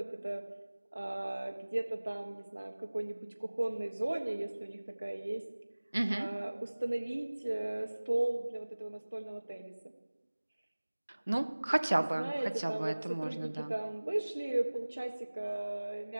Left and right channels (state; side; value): inverted; both; correlation -1.00